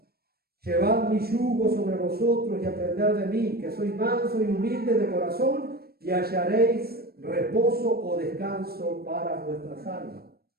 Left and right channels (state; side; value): late; left; 0.45 ms